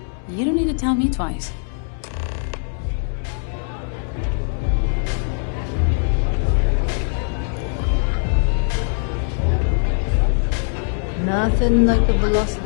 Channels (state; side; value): silent; right; 65 dB below the other